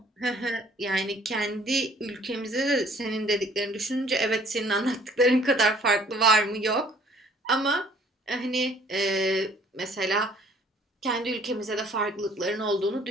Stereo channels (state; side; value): normal; both; correlation 0.57